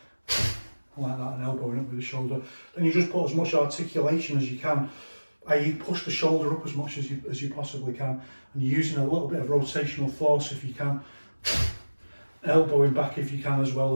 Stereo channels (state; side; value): inverted; both; correlation -1.00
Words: like that and elbowing up with the shoulder. Then you just put as much articulation as you can, i.e. push the shoulder up as much as you possibly can, and you're using a little bit of rotational force if you can, elbowing back if you can, as well